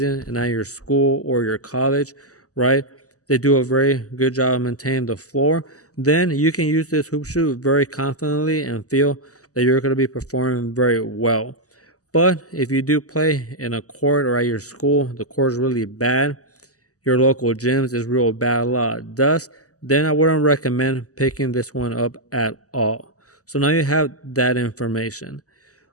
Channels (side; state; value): right; late; 0.66 ms